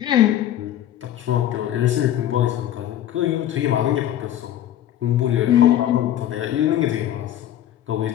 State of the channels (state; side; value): quieter; right; 11.8 dB